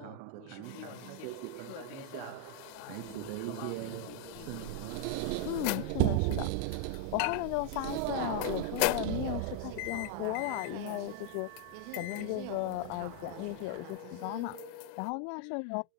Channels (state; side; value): different; both; correlation 0.00